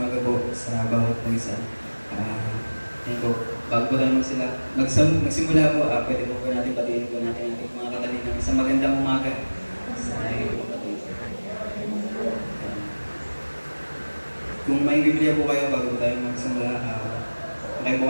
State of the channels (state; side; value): inverted; both; correlation -1.00